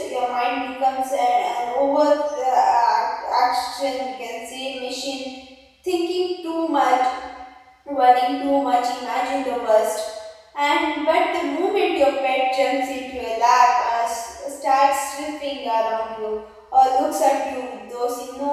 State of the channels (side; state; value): both; identical; correlation 1.00